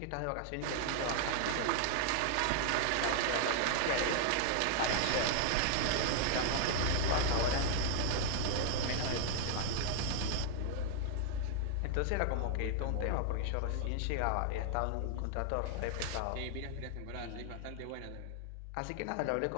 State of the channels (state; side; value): different; both; correlation 0.00